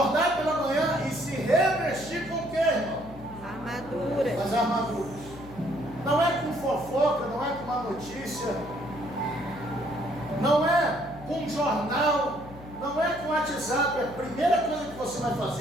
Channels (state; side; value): noise; left; hum, 17 dB below the sound